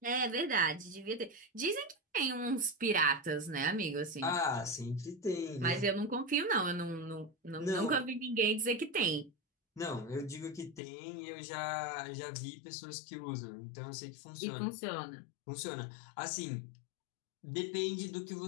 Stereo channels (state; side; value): drops out; right; at 10.8 s